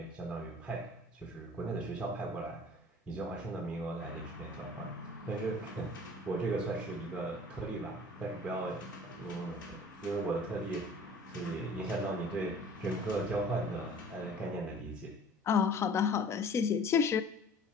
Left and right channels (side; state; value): both; normal; correlation 0.47